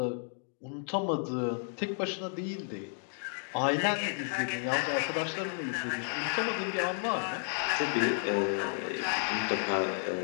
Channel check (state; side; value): silent; right; 56 dB below the other